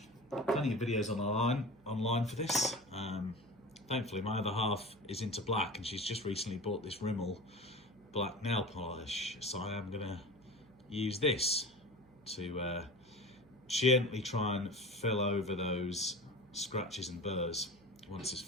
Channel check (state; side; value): noise; right; hum, 28 dB below the sound